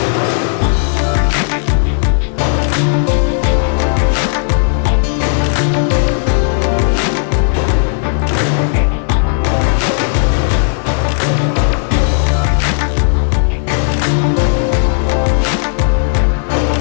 Jesse Miller, I'm still going to make it look the same way. Hand up. On the snap of the ball, I'm holding up my guy. All right, I'm going to fire off with everything I got, nice and low. Bang. I want to be here. Once I get here, what's the rule? How long do I have to hold him up?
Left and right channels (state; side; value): silent; right; digital silence